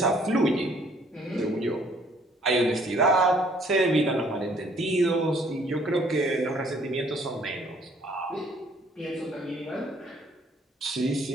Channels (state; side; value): normal; both; correlation 0.61